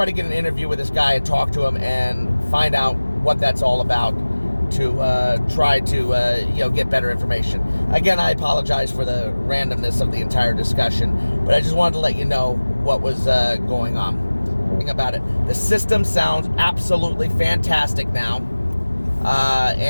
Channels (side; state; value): both; inverted; correlation -1.00